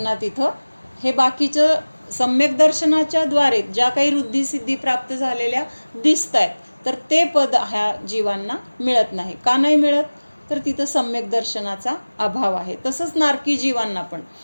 तिथं हे बाकीचं सम्यक दर्शनाच्या द्वारे ज्या काही वृद्धिसिद्धी प्राप्त झालेल्या दिसत आहेत तर ते पद ह्या जीवांना मिळत नाही. का नाही मिळत तर तिथं सम्यक दर्शनाचा अभाव आहे. तसंच नारकी जीवांना पण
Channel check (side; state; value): both; inverted; correlation -1.00